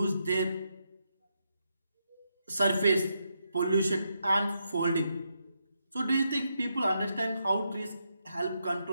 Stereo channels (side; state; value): both; inverted; correlation -0.81